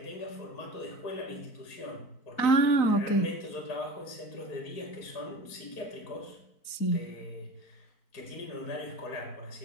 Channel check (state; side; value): late; right; 4.5 ms